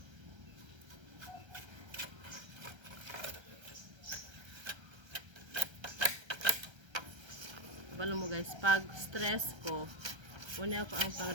Balo mo guys, pag stress ko, una ako ang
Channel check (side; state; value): left; late; 1.3 ms